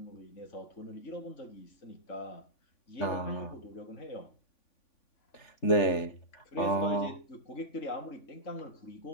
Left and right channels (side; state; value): right; late; 3.5 ms